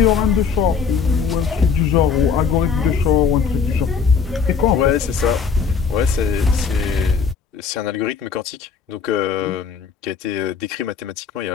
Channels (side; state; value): right; quieter; 5.9 dB